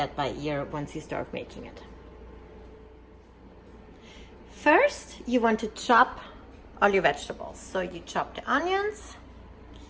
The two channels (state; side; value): identical; both; correlation 1.00